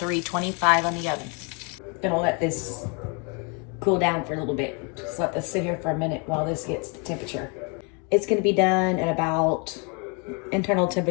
on the oven. Gonna let this cool down for a little bit. Just let this sit here for a minute while this gets the temperature. It's gonna be done at about internal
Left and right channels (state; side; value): quieter; right; 34.5 dB